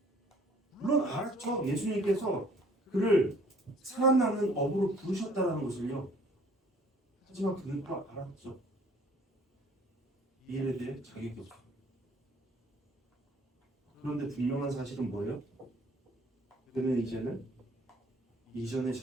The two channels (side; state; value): both; normal; correlation 0.56